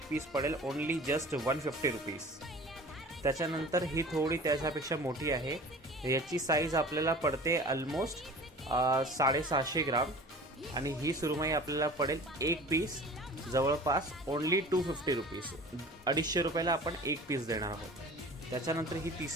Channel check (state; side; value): normal; both; correlation 0.41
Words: पीस पडेल ओनली जस्ट 150 रुपीज। त्याच्यानंतर ही थोडी त्याच्यापेक्षा मोठी आहे। याची साईज आपल्याला पडते ऑलमोस्ट 750 ग्राम आणि ही सुरमई आपल्याला पडेल एक पीस जवळपास ओनली 250 रुपीज। 250 रुपयाला आपण एक पीस देणार आहोत। त्याच्यानंतर ही